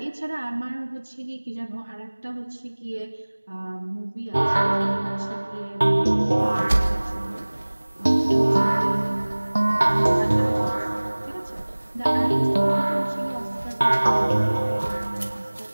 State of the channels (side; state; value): both; inverted; correlation -1.00